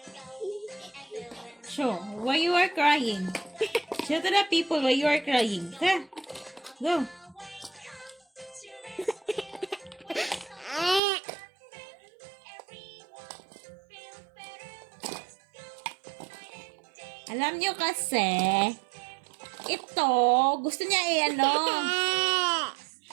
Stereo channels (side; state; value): left; drops out; at 11.0 s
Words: Show why you are crying. Show to the people why you are crying. Ha? Go. Alam nyo kasi, ito, gusto niya